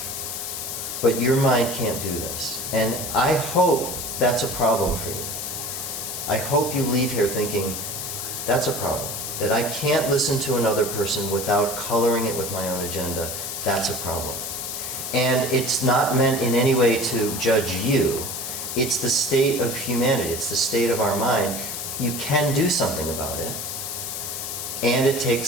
but your mind can't do this. And I hope that's a problem for you. I hope you leave here thinking, that's a problem. That I can't listen to another person without coloring it with my own agenda. That's a problem. And it's not meant in any way to judge you. It's the state of humanity. It's the state of our mind. You can do something about it. And it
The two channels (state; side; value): noise; left; hiss, 5 dB below the sound